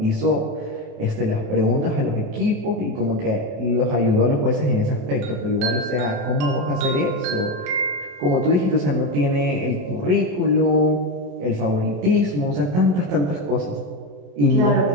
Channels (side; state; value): left; late; 28 ms